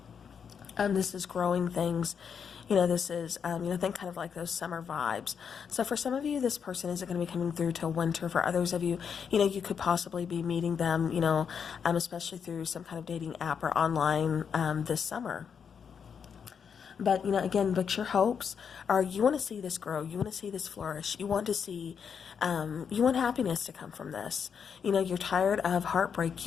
This is growing things. You know, this is, you know, think kind of like those summer vibes. So for some of you, this person isn't going to be coming through till winter. For others of you, you know, you could possibly be meeting them, you know, especially through some kind of dating app or online this summer. But, you know, again, but your hopes are, you want to see this grow. You want to see this flourish. You want to see, you want happiness to come from this. You know, you're tired of heartbreak.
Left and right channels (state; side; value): quieter; right; 7.0 dB